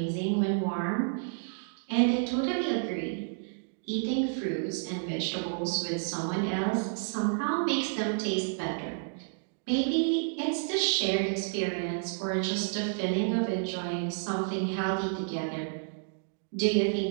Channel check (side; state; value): left; silent; digital silence